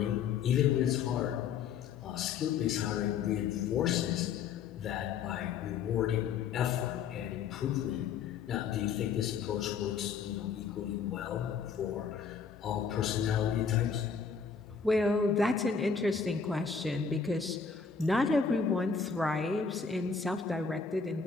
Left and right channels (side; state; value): right; quieter; 6.0 dB